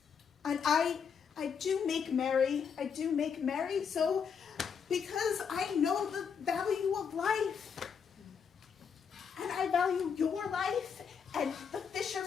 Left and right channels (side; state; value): right; quieter; 6.7 dB